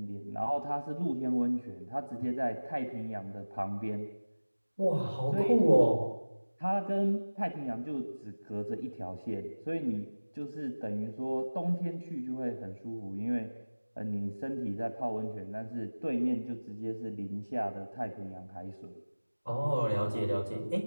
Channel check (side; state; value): both; inverted; correlation -1.00